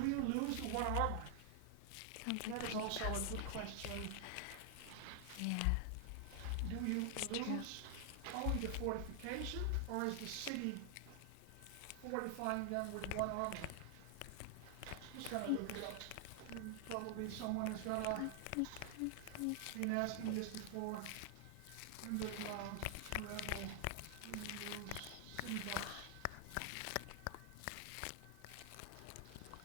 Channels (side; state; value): both; different; correlation 0.00